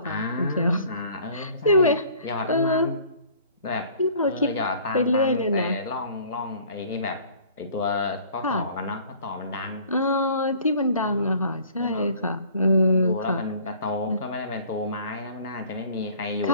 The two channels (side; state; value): both; inverted; correlation -0.52